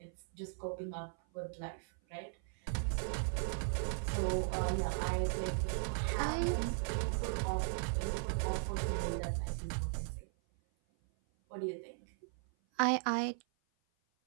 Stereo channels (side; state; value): left; silent; 53 dB below the other